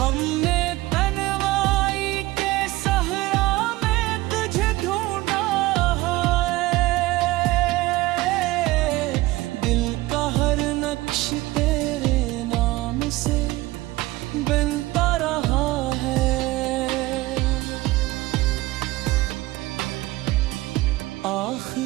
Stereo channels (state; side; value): quieter; left; 19.0 dB